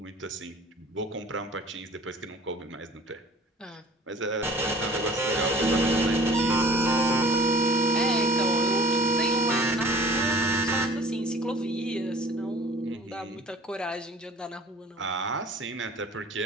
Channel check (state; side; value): normal; both; correlation 0.47